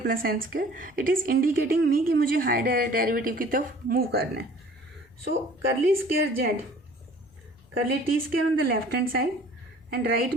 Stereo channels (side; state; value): left; noise; rumble, 29 dB below the sound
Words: plus N square, it is indicating me कि मुझे higher derivative की तरफ मूव करना है। So curly square Z, curly T square on the left hand side and right